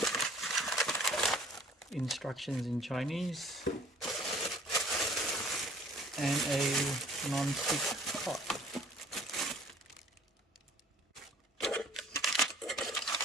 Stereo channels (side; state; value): both; normal; correlation 0.53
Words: Instructions in Chinese. And a non-stick pot.